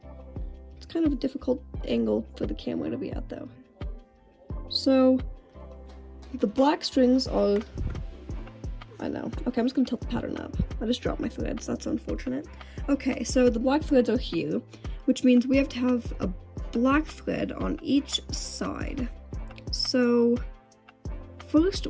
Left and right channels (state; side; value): identical; both; correlation 1.00